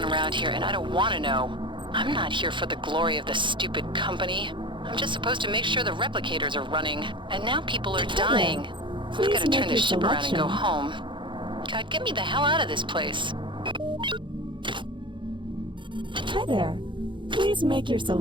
around here, and I don't want to know. I'm not here for the glory of the stupid company. I'm just supposed to make sure the replicators are running, and now people are dying. I've got to turn this ship around and go home. God, get me the hell out of this place. Hi there. Please make your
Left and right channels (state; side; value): late; left; 0.23 ms